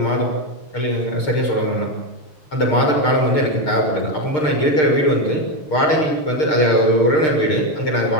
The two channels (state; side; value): late; right; 6.6 ms